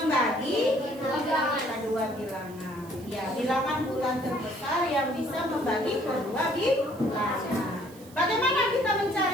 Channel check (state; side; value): noise; right; hiss, 23 dB below the sound